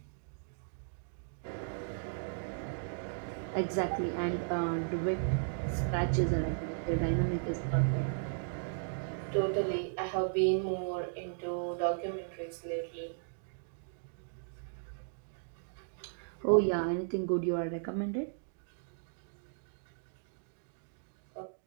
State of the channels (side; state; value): left; silent; digital silence